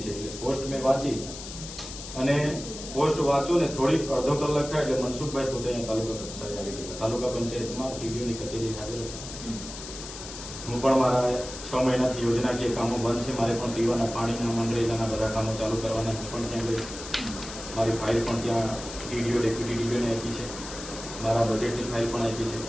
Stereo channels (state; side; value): noise; left; hiss, 11 dB below the sound